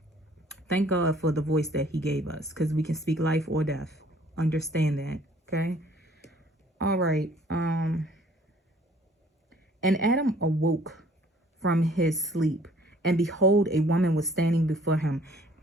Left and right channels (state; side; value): normal; both; correlation 0.57